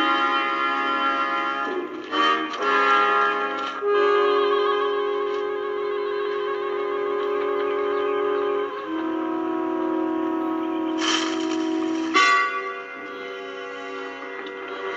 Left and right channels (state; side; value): identical; both; correlation 1.00